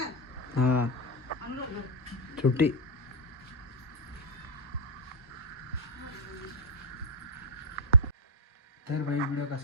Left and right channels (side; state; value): both; normal; correlation 0.00